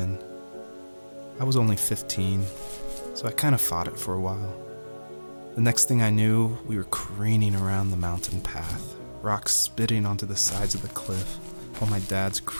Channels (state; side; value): inverted; both; correlation -1.00